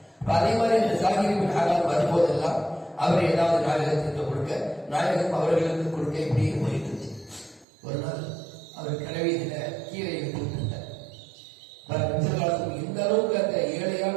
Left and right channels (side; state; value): left; drops out; at 7.7 s